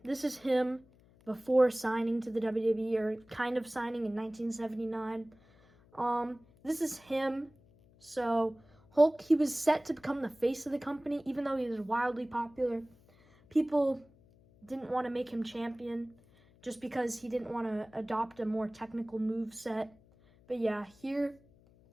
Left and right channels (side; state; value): left; noise; hum, 28 dB below the sound